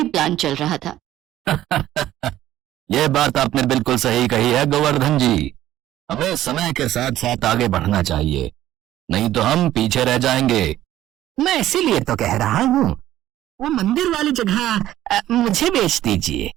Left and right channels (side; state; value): left; quieter; 13.4 dB